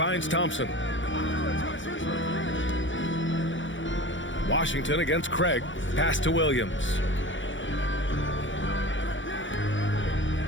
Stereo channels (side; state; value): right; late; 0.55 ms